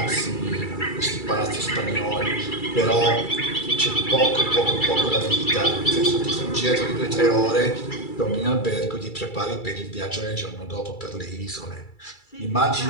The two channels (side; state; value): right; late; 2.3 ms